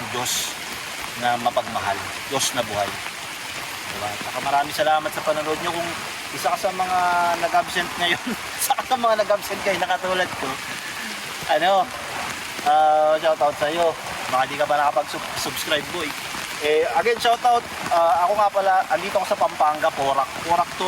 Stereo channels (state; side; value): identical; both; correlation 1.00